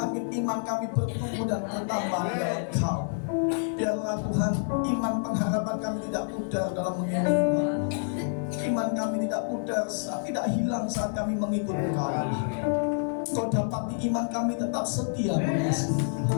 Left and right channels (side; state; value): right; silent; 59 dB below the other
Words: iman kami bertumbuh dan bertambah dalam Kau. Biarlah Tuhan, iman pengharapan kami tidak pudar dalam mengikut Tuhan. Iman kami tidak pudar, tidak hilang saat kami mengikut Kau. Kau dapati iman kami tetap setia mengasihi